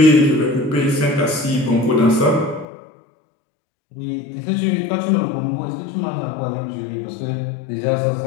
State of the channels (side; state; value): right; drops out; at 2.7 s